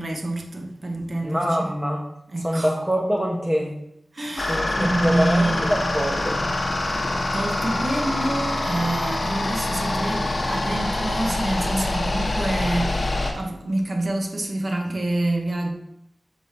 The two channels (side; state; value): both; normal; correlation 0.96